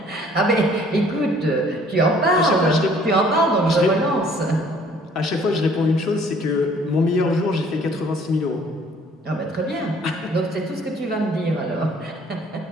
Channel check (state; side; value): normal; both; correlation 0.57